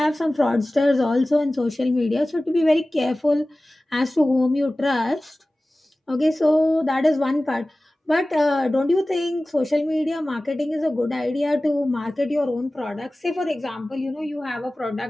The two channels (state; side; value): normal; both; correlation 0.97